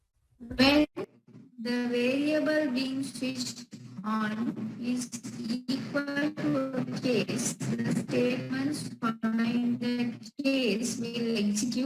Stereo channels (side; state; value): both; identical; correlation 1.00